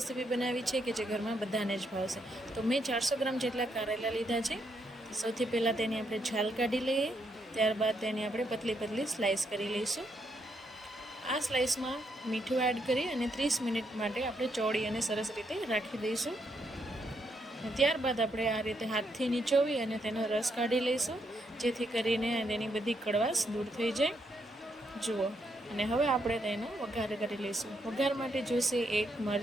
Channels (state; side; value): normal; both; correlation 0.77